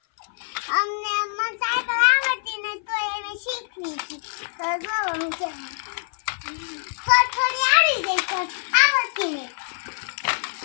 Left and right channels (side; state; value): right; silent; 57 dB below the other